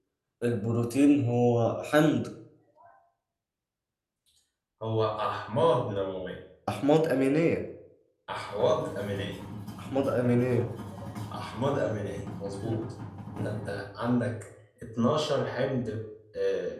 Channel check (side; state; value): both; identical; correlation 1.00